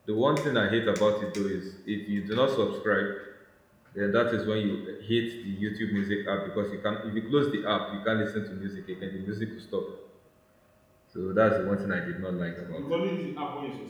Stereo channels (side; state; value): both; identical; correlation 1.00